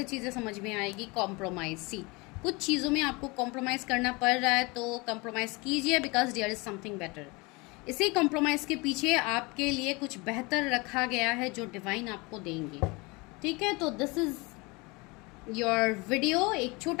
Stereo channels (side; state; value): right; quieter; 26.1 dB